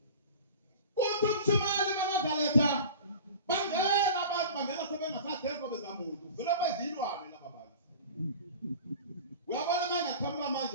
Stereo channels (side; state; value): both; inverted; correlation -0.38